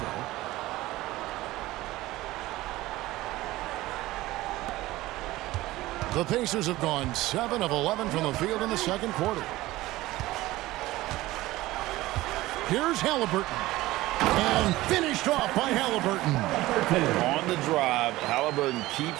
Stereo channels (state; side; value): quieter; left; 17.7 dB